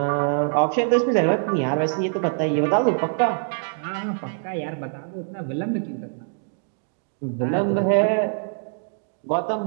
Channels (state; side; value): silent; left; digital silence